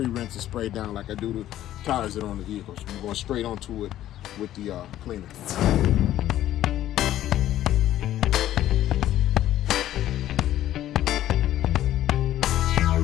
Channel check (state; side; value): quieter; right; 13.0 dB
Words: and spray down like I do the tires that are on the vehicles. I'm going straight onto it with the cleaner.